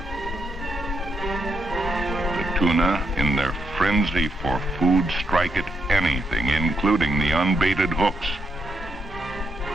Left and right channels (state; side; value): normal; both; correlation 0.79